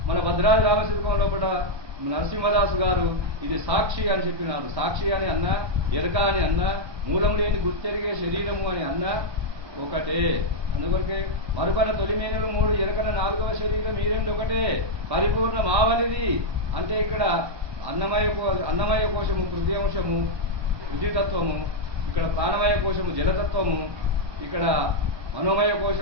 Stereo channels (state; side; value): late; left; 1.2 ms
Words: మన భద్రాద్రి రామశిల్పం లోపల నరసింహదాసు గారు ఇది సాక్షి అని చెప్పినారు. సాక్షి అని అన్నా, ఎరక అని అన్నా, మూలం లేని గుర్తెరిగే శరీరము అని అన్నా ఒకటే. అందుకొరకే మరుపన తొలిమేనులు 3 ఎరకన 4వ శరీరం ఈ 2 ఒకటే పరిపూర్ణ మావలిది. అంటే ఇక్కడ అన్నమయ కోశము పృథ్వీ పృథ్వీతత్వము, ఇక్కడ ప్రాణమయ కోశము జలతత్వము, ఇక్కడ మనోమయ